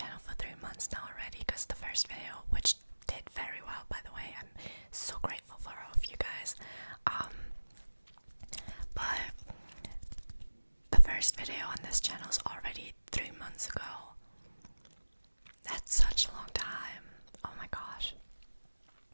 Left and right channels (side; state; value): both; inverted; correlation -1.00